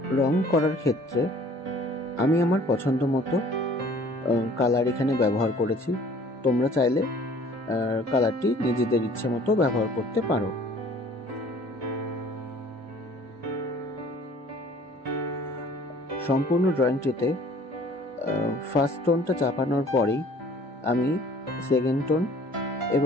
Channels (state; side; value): normal; both; correlation 0.53